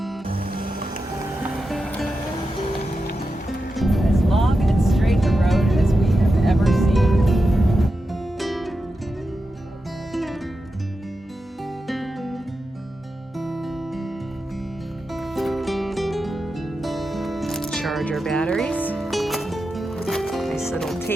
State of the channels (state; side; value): normal; both; correlation 0.90